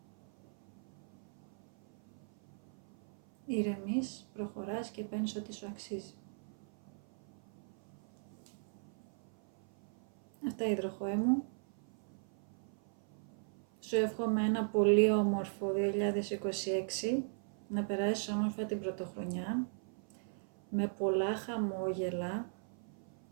ηρεμείς, προχωράς και παίρνεις ό,τι σου αξίζει. Αυτά, υδροχόε μου. Σου εύχομαι ένα πολύ όμορφο 2026, να περάσεις όμορφα την πρωτοχρονιά, με πολλά χαμόγελα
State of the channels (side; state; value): left; silent; 52 dB below the other